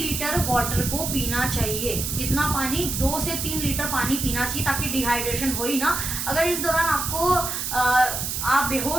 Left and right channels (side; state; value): right; noise; hiss, 3 dB below the sound